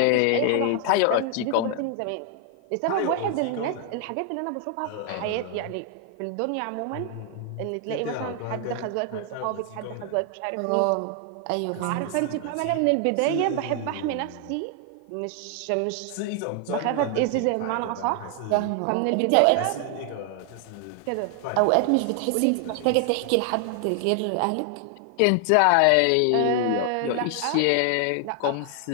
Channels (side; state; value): both; different; correlation 0.00